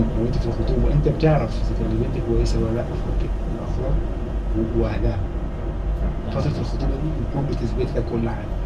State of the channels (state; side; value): identical; both; correlation 1.00